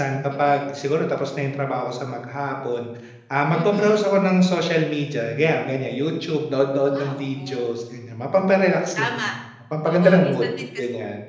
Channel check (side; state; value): both; identical; correlation 1.00